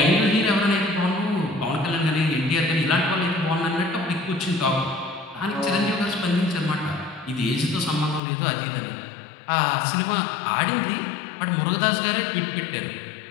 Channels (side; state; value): right; drops out; at 8.2 s